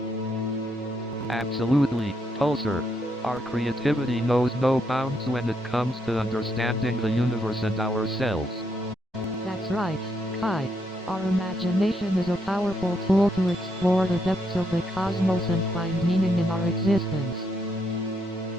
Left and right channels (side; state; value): both; normal; correlation 0.77